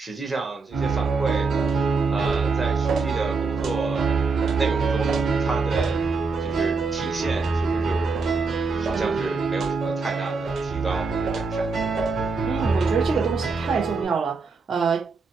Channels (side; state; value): left; quieter; 4.3 dB